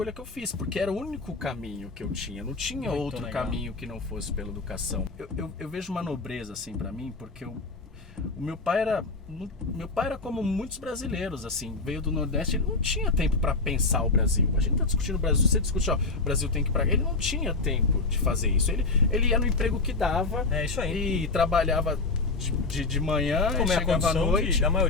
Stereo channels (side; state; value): right; quieter; 3.7 dB